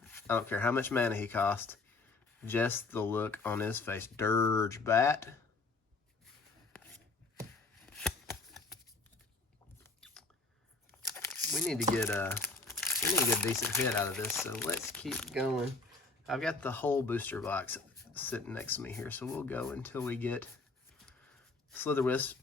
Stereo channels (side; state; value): right; quieter; 3.6 dB